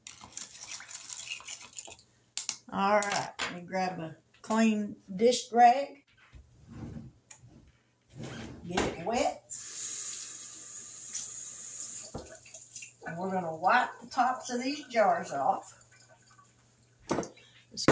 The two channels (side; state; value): both; identical; correlation 1.00